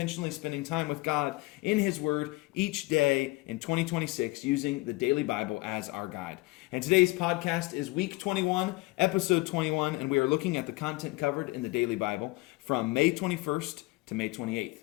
spending time with God in His Word each day in 2026 using the Daily Bible as our guide. And today's podcast is week 21, episode 21, and we are looking at the content covered in the Daily Bible from May 21st to May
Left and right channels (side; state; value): right; quieter; 22.1 dB